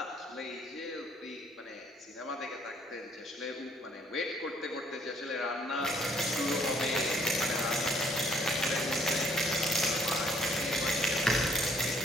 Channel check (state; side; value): normal; both; correlation 0.63